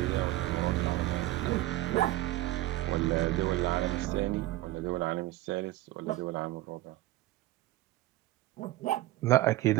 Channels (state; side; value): quieter; left; 16.6 dB